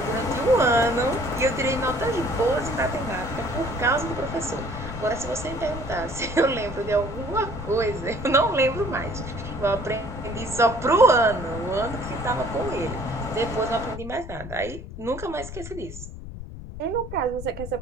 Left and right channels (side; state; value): left; noise; rumble, 11 dB below the sound